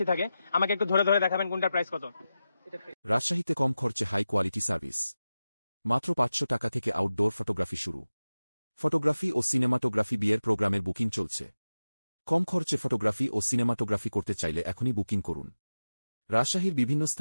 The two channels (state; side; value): inverted; both; correlation -0.94